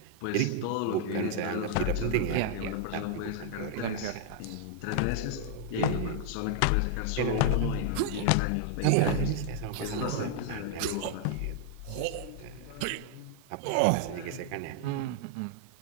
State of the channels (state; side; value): different; both; correlation 0.00